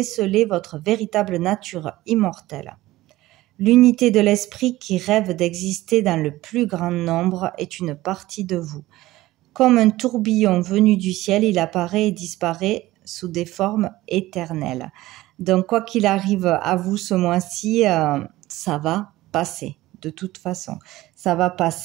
votre véritable nature immortelle. L'unité de l'esprit qui rêve d'exister dans le plus grand nombre est une partie de vous. Comme un tourbillon venu du ciel, il apparaît et disparaît sous des formes éternelles. Donc, quoi qu'il arrive à vous ce mois-ci, ça va passer. De toute façon, ça va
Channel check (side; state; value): left; quieter; 17.2 dB